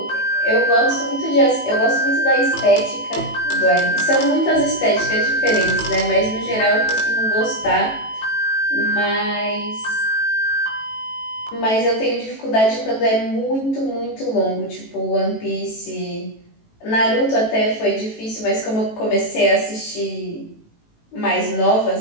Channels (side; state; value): right; late; 18 ms